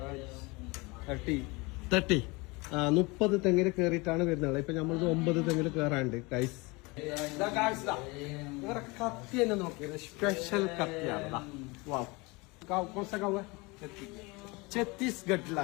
30. 30 തെങ്ങിൽ കയറിയിട്ടാണ് വരുന്നത്. ഇപ്പൊ നമ്മൾ 9 തെങ്ങിൽ കയറാണ്ട് ഗൈസ്. കത്തി തന്നെ നോക്കിയത് സ്പെഷ്യൽ കത്തിയാണ്.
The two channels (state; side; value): quieter; right; 25.7 dB